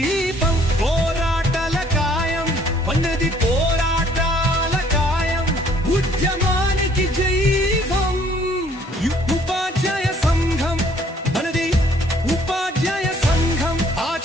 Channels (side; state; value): both; normal; correlation 0.61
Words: పోరాటాల కాయం ఉన్నది పోరాటాల కాయం ఉద్యమానికి జైవం ఉపాధ్యాయ సంఘం మనది ఉపాధ్యాయ సంఘం